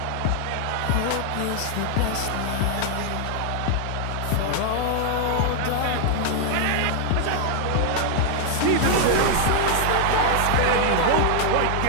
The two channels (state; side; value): different; both; correlation 0.00